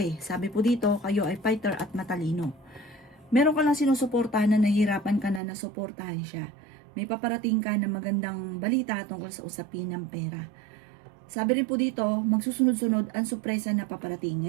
Sabi po dito, kayo ay fighter at matalino. Meron ka lang sinusuportahan na nahihirapan ka na nasuportahan siya. May paparating ka na magandang balita tungkol sa usapin ng pera. Sabi rin po dito, magsusunod-sunod ang sorpresa na paparating.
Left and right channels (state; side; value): drops out; left; at 5.4 s